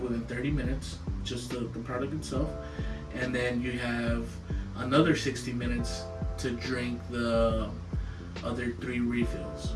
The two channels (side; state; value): both; identical; correlation 1.00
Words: within 30 minutes, just the product itself, and then you have another 60 minutes to drink the other 3 refills